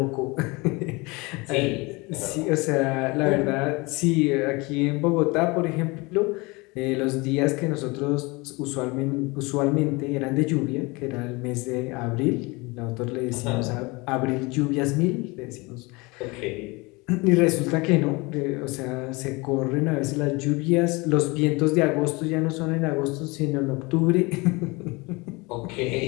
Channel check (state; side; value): quieter; right; 25.5 dB